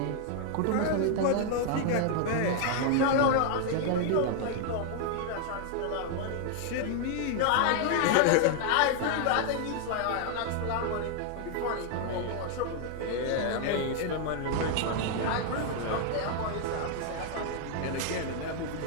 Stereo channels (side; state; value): both; different; correlation 0.00